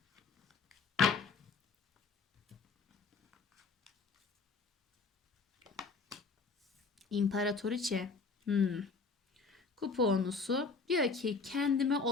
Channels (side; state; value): right; quieter; 4.5 dB